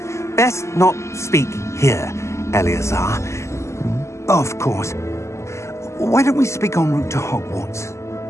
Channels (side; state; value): right; late; 0.13 ms